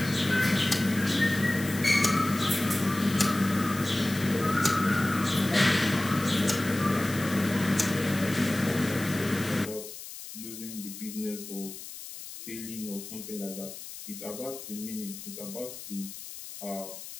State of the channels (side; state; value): left; noise; hiss, 12 dB below the sound